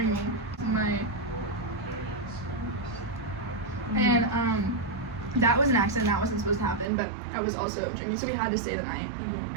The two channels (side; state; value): left; drops out; at 6.9 s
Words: me. And that was an accident. That wasn't supposed to happen, but I was also drinking, so we had to stay the night.